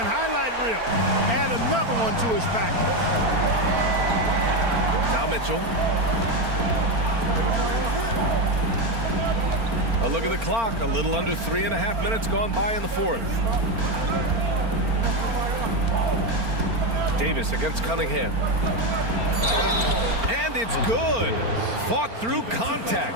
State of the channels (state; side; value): late; left; 4.4 ms